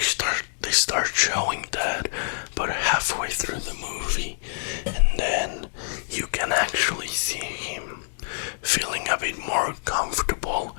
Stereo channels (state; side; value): silent; right; digital silence